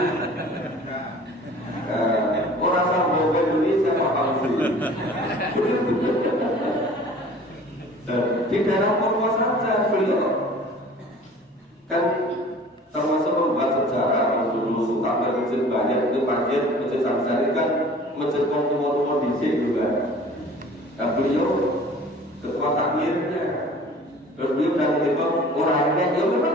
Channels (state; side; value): normal; both; correlation 0.46